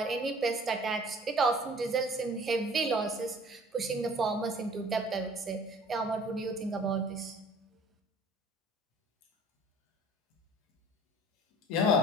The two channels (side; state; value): both; normal; correlation 0.49